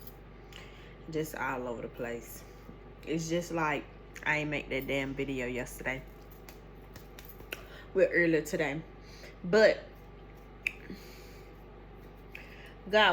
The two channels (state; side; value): identical; both; correlation 1.00